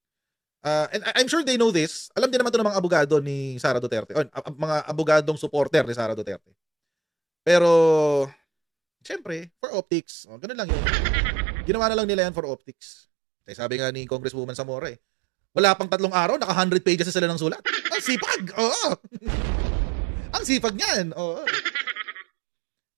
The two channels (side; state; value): left; drops out; at 9.5 s